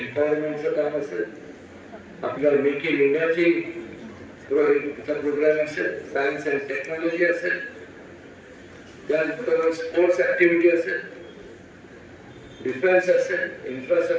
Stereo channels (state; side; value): identical; both; correlation 1.00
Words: काम असेल, आपल्या मेक इन इंडियाची प्रोग्राम असेल, सायन्स अँड टेक्नॉलॉजी असेल, त्यानंतर स्पोर्ट्स ऍक्टिव्हिटी असेल, डिफेन्स असेल,